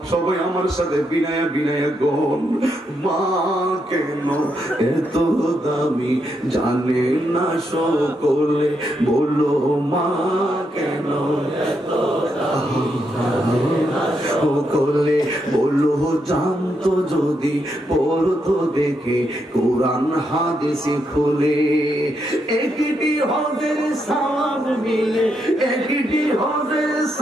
সবাই আমার সাথে বিনায়া বিনায়া গন, মা কেন এত দামি জানে না সকলে, বলো মা কেন এত দামি সকলে, বলো জানতো যদি পড়তো দেখে কোরআন হাদিসে খুলে। একটি হজের সওয়াব মিলে, একটি হজের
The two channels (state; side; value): normal; both; correlation 0.80